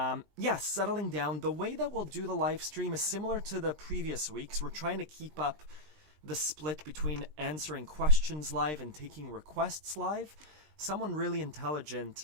settling down. The way that we'll do the live stream is similar to the previous weeks. We're trying to keep up the split between answering questions live and taking requests live. Someone really intelligent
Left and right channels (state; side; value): late; left; 20 ms